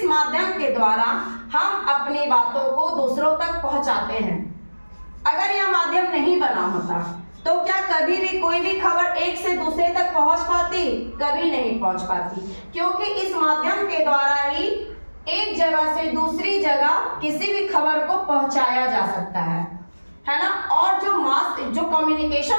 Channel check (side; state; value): both; inverted; correlation -1.00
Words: माध्यम के द्वारा हम अपनी बातों को दूसरों तक पहुंचाते हैं। अगर यह माध्यम नहीं बना होता तो क्या कभी भी कोई भी खबर एक से दूसरे तक पहुंच पाती? कभी नहीं पहुंच पाती, क्योंकि इस माध्यम के द्वारा ही एक जगह से दूसरी जगह किसी भी खबर को पहुंचाया जा सकता है ना। और जो